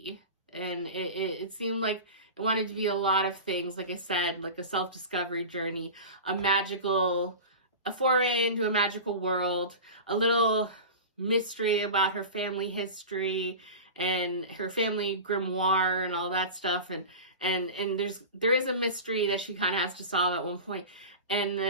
And it seemed like it wanted to be a lot of things, like I said, like a self-discovery journey, a foray into a magical world, a little mystery about her family history and her family grimoire and all that stuff. And there is a mystery that she kind of has to solve at one point. And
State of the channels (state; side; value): inverted; both; correlation -0.30